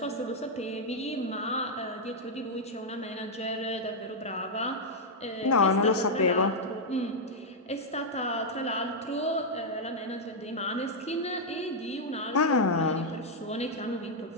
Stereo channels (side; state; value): both; normal; correlation -0.03